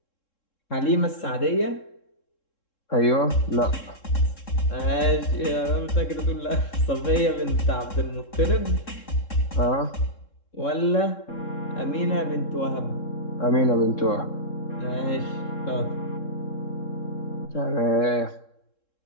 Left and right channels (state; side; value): late; right; 3.7 ms